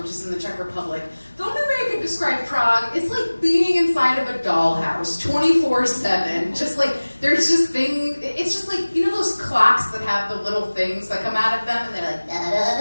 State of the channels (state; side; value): inverted; both; correlation -1.00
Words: which is in the Czech Republic. The only way I could describe Prague is like being inside of a dollhouse 24/7. Just like, there's just things, it's just like, those clocks that have the little things that come out of them, and they're like,